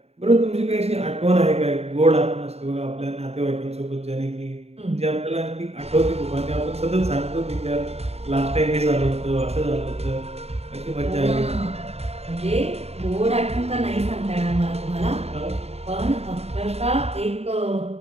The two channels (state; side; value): late; left; 0.30 ms